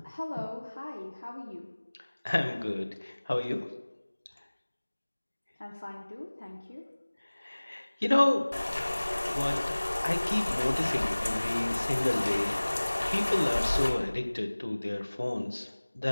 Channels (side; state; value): both; inverted; correlation -1.00